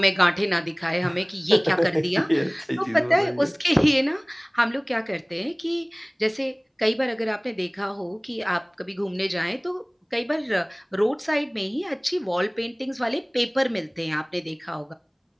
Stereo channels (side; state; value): both; identical; correlation 1.00